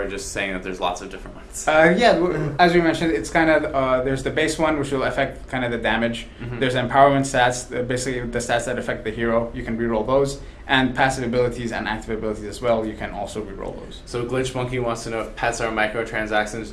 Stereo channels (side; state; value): both; identical; correlation 1.00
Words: just saying that there's lots of different ones? As we mentioned, it's kind of there's the base one, which will affect kind of the damage. There's empowerment stats, basically the stats that affect the hero. You can reroll those, and passive abilities and active abilities as well. You can also reroll those. So Glitch Monkey wants to know if pets are microtransactions.